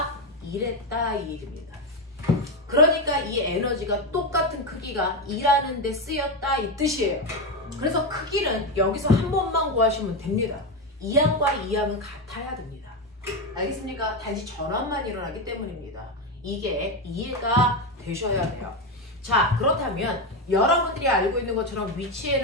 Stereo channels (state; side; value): normal; both; correlation 0.11